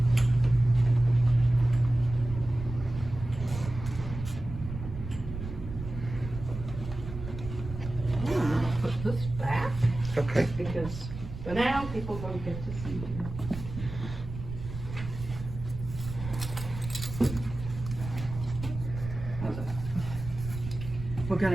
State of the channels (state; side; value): noise; right; rumble, 9 dB below the sound